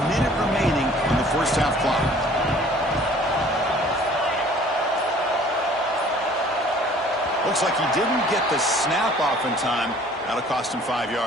minute remaining on the first half clock. Looks like he didn't get the snap off in time. That'll cost him 5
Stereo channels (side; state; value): both; normal; correlation 0.53